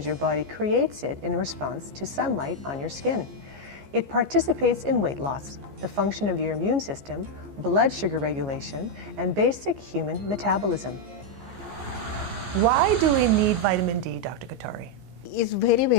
your body creates it in response to sunlight on your skin. It participates in weight loss, the function of your immune system, blood sugar regulation, and basic human metabolism. Why do we need vitamin D, Dr. Katari? It's very,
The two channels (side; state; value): left; late; 15 ms